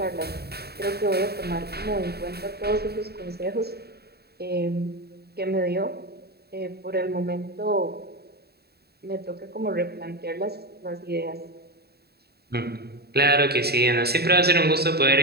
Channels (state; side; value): late; left; 0.46 ms